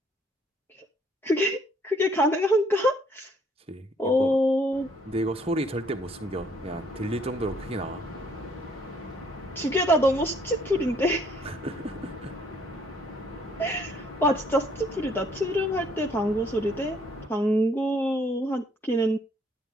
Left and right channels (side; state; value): both; normal; correlation 0.64